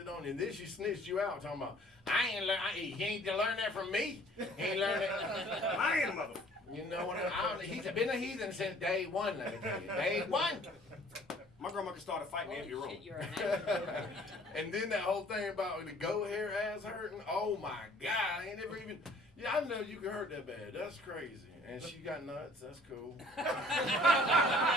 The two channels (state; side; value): normal; both; correlation 0.55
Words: on you. And then she snitched you out talking about, he ain't learned that from me. He ain't learned it. I ain't a mother. You know what he's been a heathen since day one, let me tell you. Day one. My grandma could start a fight in the empty room. Shit, you're an actor. And then that whole thing about the goat hair ass hurting. Oh my God, I ain't never even. Yeah, I know you can hurt that bad. That's crazy. And she got nuts. That's cool.